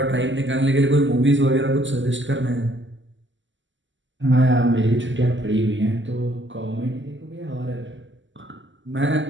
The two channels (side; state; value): left; late; 0.54 ms